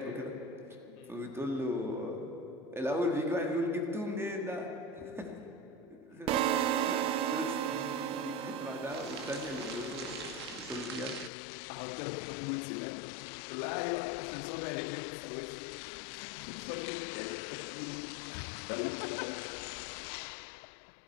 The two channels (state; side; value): drops out; right; at 11.3 s